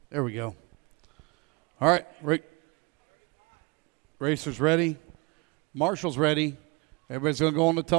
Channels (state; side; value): quieter; left; 28.6 dB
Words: There we go. All right, racers ready. Marshall's ready. Everybody's going to go on the